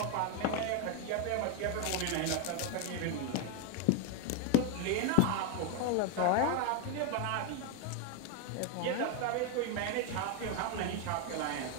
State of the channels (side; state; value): both; different; correlation 0.01